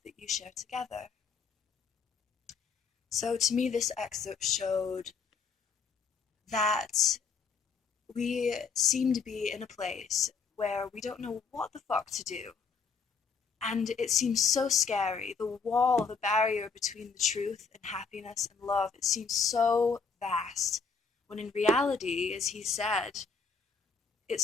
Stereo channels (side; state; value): right; quieter; 5.2 dB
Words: that you share together. So to me, this excerpt showed that we seem to be in a place where we don't know what the fuck to do. And it seems so scary. The wall, the barrier between the truth and happiness and love, it seems so vast. When in reality, as he said, it's